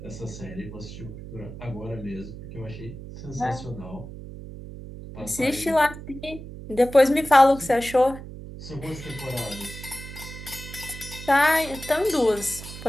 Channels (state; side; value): noise; right; hum, 12 dB below the sound